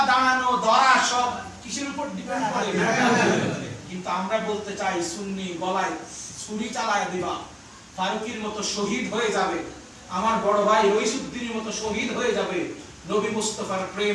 দাঁড়ানো, ধরা সব কিসের উপর ডিপেন্ড করে? কিন্তু আমরা বলতে চাই, সুন্নি গলায় ছুরি চালায় দিবা, ফারুকীর মতো শহীদ হয়ে যাবে, আমার বড় ভাই রইসুদ্দিনের মতো শহীদ হয়ে যাবে, নবী মুস্তাফার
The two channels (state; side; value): identical; both; correlation 1.00